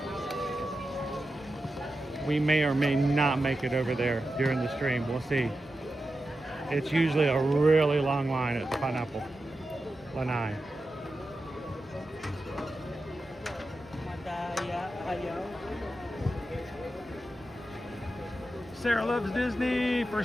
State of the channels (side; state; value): both; normal; correlation 0.91